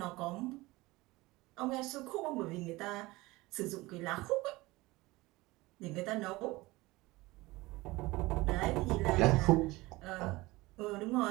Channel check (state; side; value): quieter; left; 20.8 dB